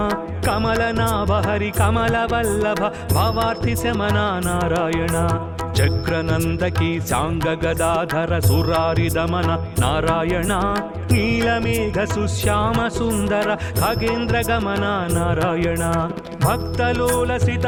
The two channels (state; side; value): identical; both; correlation 1.00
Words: కమలనాభ హరి కమల వల్లభ భవార్తి శమన నారాయణ చక్రనందకి సాంగ గదాధర సురారి దమన నారాయణ నీలమేఘ సుశ్యామ సుందర ఖగేంద్ర గమన నారాయణ భక్తలోలసిత